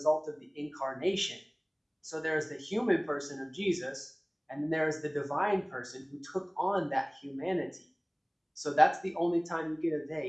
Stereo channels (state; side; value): identical; both; correlation 1.00